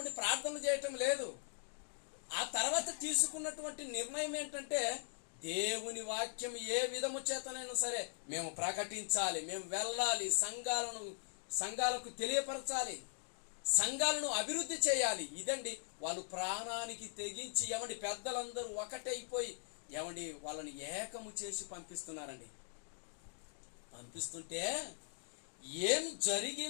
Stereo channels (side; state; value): right; silent; digital silence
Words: ప్రార్థనలు చేయటం లేదు. ఆ తర్వాత తీసుకున్నటువంటి నిర్ణయం ఏంటంటే దేవుని వాక్యం ఏ విధము చేతనైనా సరే మేము ప్రకటించాలి, మేము వెళ్ళాలి, సంఘాలకు తెలియపరచాలి, సంఘాలను అభివృద్ధి చేయాలి. ఇదండి వాళ్ళు ప్రాణానికి తెగించి ఏమండి పెద్దలందరూ ఒకటైపోయి ఏమండి వాళ్ళని ఏకము చేసి పంపిస్తున్నారండి. పంపిస్తుంటే ఏం